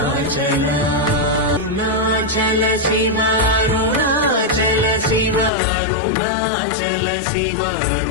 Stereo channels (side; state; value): right; drops out; at 5.5 s